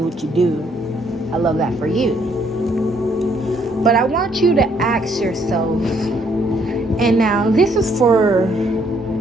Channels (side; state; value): both; normal; correlation 0.68